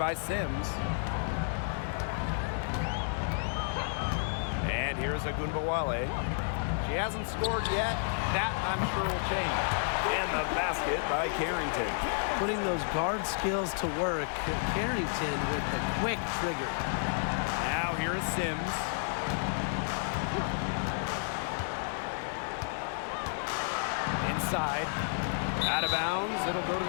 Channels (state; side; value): silent; right; digital silence